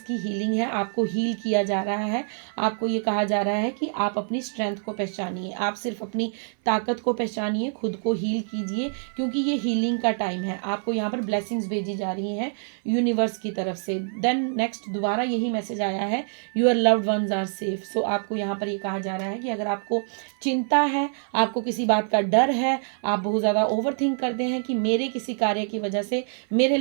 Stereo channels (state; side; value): silent; left; 57 dB below the other